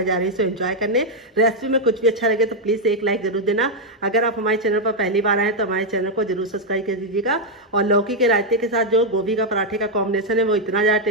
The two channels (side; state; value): both; normal; correlation -0.01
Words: जा रही हूँ एंजॉय करने। रेसिपी में कुछ भी अच्छा लगे तो प्लीज़ एक लाइक जरूर देना। अगर आप हमारे चैनल पर पहली बार आए तो हमारे चैनल को जरूर सब्सक्राइब कर दीजिएगा। और लौकी के रायते के साथ जो गोभी का पराठे का कॉम्बिनेशन है वो इतना ज़्यादा